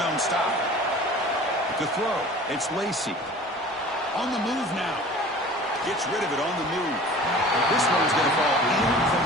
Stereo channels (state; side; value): normal; both; correlation 0.43